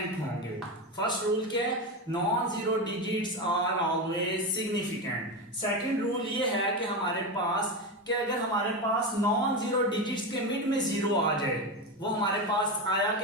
होंगे। फर्स्ट रूल क्या है? Non zero digits are always significant. Second rule ये है कि हमारे पास कि अगर हमारे पास नॉन जीरो डिजिट्स के मिड में जीरो आ जाए, वो हमारे पास आया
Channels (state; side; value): normal; both; correlation 0.17